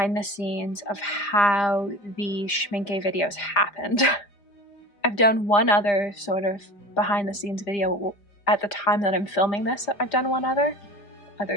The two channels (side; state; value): right; late; 5.0 ms